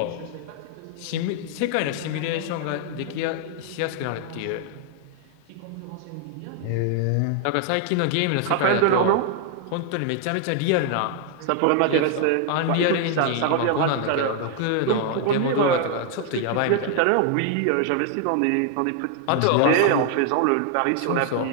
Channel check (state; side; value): different; both; correlation 0.00